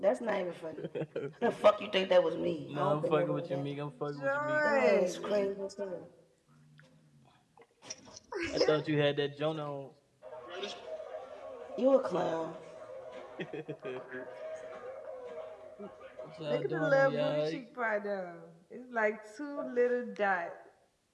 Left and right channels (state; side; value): identical; both; correlation 1.00